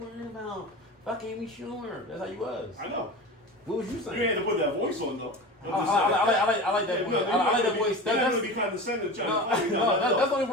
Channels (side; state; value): both; normal; correlation 0.31